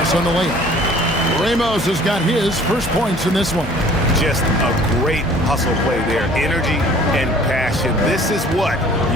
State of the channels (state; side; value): normal; both; correlation 0.52